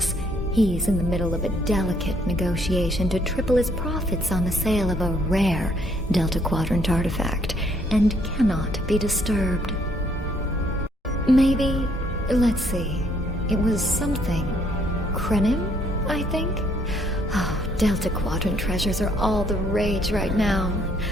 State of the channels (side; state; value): both; normal; correlation 0.67